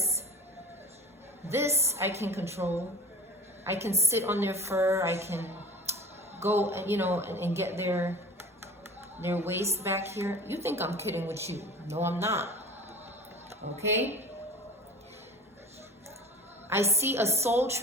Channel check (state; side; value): normal; both; correlation 0.40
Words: I can control. I can sit on their fur. I can go, you know, and get their waist back here. You think I'm kidding with you. No, I'm not. Okay? I see a soul